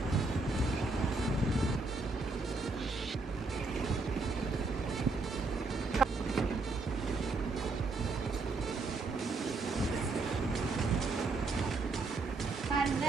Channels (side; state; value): left; quieter; 3.6 dB